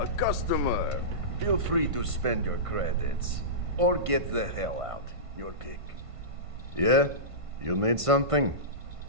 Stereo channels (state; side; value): late; left; 1.5 ms